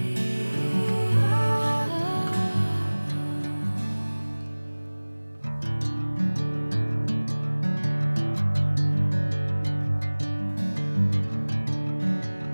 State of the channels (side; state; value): both; inverted; correlation -1.00